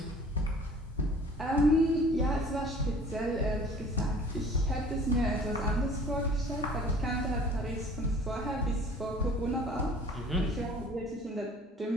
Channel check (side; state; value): both; normal; correlation 0.49